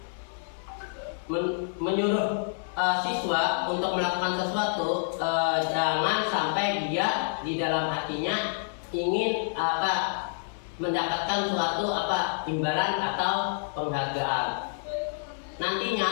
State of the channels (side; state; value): right; silent; 59 dB below the other